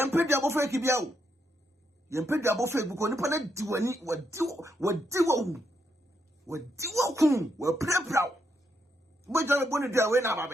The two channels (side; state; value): both; normal; correlation 0.79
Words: pay the above Kibiao. Yam pay the above because Nippon do any what do play proud. But you're going to do away now,